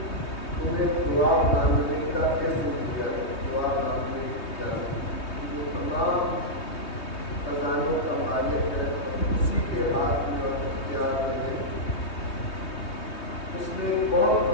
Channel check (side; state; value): right; late; 3.2 ms